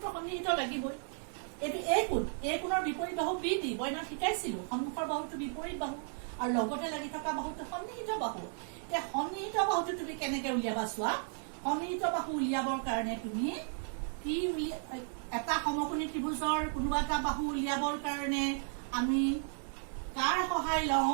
সন্নিহিত লাগিবই এইটো এই কোণৰ বিপৰীত বাহু BD বইনা শিকাইছিলো সন্মুখৰ বাহুটো বিপৰীত বাহু আৰু লগতে লাগি থকা বাহুটো সন্নিহিত বাহু এতিয়া সন্নিহিত বাহুটো তুমি কেনেকে উলিয়াবা চোৱা সন্নিহিত বাহু উলিয়াবৰ কাৰণে তুমি কি এটা সমকোণী ত্ৰিভুজৰ কোনোবা এটা বাহু উলিয়াবৰ কাৰণে আমি কাৰ সহায়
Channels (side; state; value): left; silent; 55 dB below the other